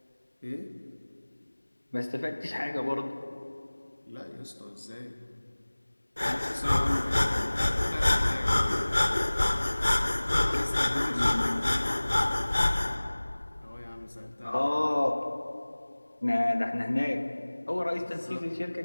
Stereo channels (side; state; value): both; inverted; correlation -1.00